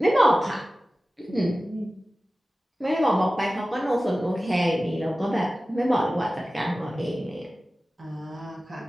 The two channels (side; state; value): both; normal; correlation 0.96